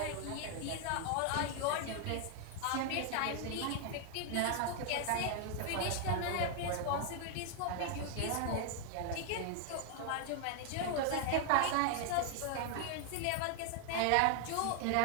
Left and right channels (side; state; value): both; different; correlation 0.00